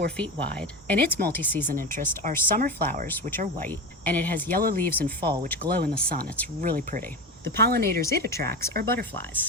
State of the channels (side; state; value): both; normal; correlation 0.22